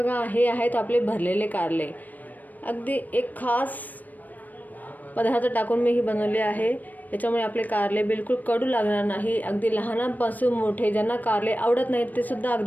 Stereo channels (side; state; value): right; late; 0.083 ms